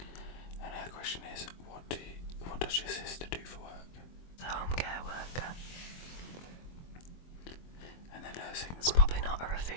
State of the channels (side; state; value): right; late; 23 ms